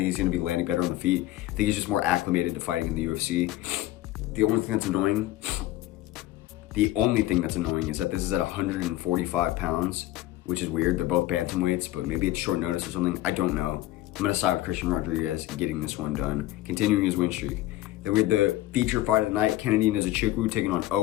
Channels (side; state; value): right; quieter; 15.7 dB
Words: he's going to be landing better on the feet. I think he's just more acclimated to fighting in the UFC. The only thing that's annoying is that this is at 145 pounds, which is weird. They're both bantamweights, but maybe it's short notice or something. I don't know. I'm going to side with Christian Rodriguez getting this one done, continuing his win streak. Then we had the feature fight of the night, Kennedy Nzechukwu taking on